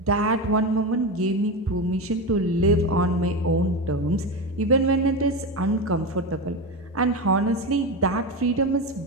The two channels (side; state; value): both; normal; correlation 0.18